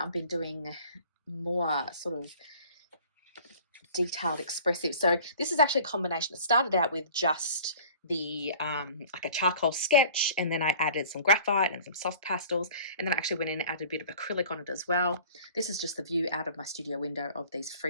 been doing more sort of detailed expressive. So this is actually a combination. It started out with just the like a charcoal sketch, and then I added some graphite and some soft pastels, and then I actually went in and added a bit of acrylic on it as well. This is just the view out of my studio window of these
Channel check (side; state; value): both; inverted; correlation -0.47